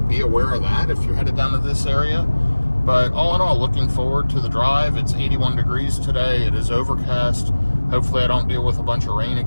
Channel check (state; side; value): inverted; both; correlation -1.00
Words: be aware of that if you're headed down to this area. But all in all, looking forward to the drive. It's 81 degrees today. It is overcast. Hopefully I don't deal with a bunch of rain